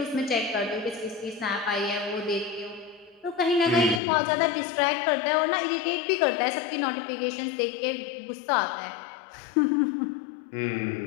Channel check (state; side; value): drops out; right; at 4.0 s